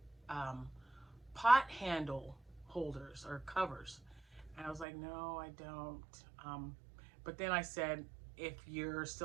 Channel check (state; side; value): drops out; left; at 4.9 s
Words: pot handle holders or covers. And I was like, no, I don't. But then I said, if you're